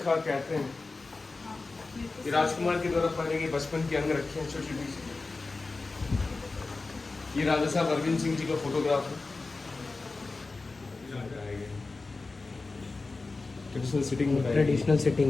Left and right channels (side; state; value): right; quieter; 3.7 dB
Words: कहते हैं। ये राजकुमार के द्वारा पहने गए बचपन के अंग रखे हैं छोटी छोटी। ये राजा साहब अरविंद सिंह जी का फोटोग्राफ है। ट्रेडिशनल सिटिंग में ट्रेडिशनल